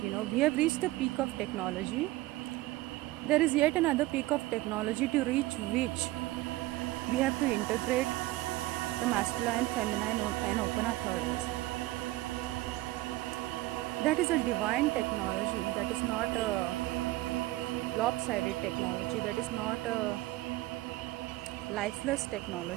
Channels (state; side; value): quieter; left; 18.2 dB